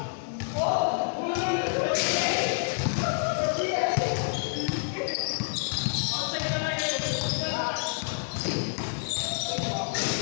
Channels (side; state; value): right; silent; 59 dB below the other